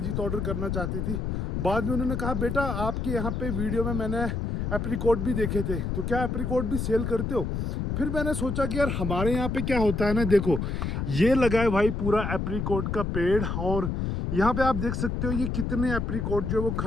ऑर्डर करना चाहती थी। बाद में उन्होंने कहा, बेटा आपके यहाँ पे वीडियो में मैंने एप्रीकोट भी देखे थे, तो क्या एप्रीकोट भी सेल करते हो? फिर मैंने सोचा कि यार हमारे यहाँ पे क्या होता है ना, देखो ये लगा है भाई पूरा एप्रीकोट का पेड़, और यहाँ पे आप देख सकते हो ये कितने एप्रीकोट जो है वो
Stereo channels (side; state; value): left; noise; rumble, 2 dB below the sound